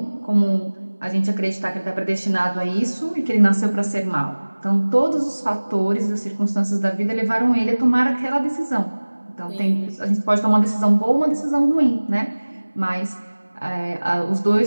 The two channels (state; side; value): inverted; both; correlation -1.00